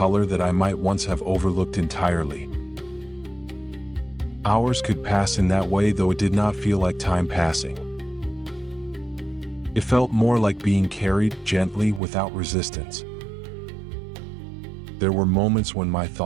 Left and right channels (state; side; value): drops out; left; at 12.0 s